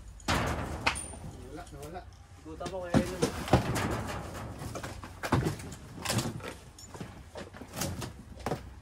Nawala. Ikutan ko kaya yun.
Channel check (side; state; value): both; identical; correlation 1.00